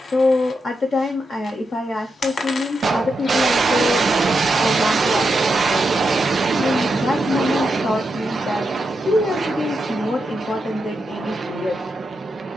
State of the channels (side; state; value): both; normal; correlation 0.85